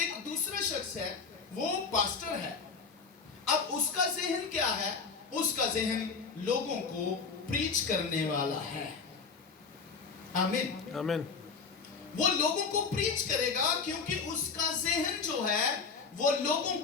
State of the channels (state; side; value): quieter; right; 5.2 dB